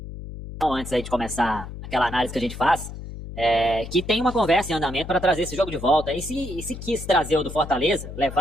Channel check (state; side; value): noise; left; hum, 10 dB below the sound